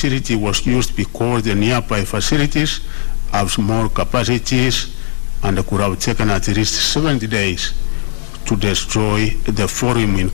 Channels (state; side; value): silent; right; digital silence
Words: was used because the nearby facilities have small capacities and could have taken at least 70 days to destroy the forum in